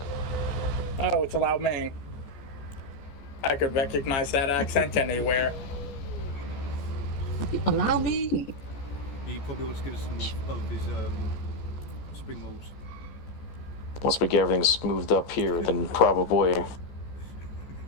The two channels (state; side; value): late; right; 14 ms